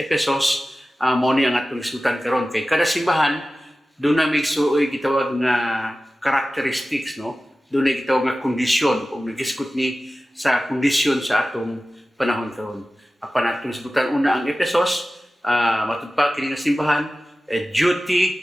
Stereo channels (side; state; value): both; normal; correlation 0.95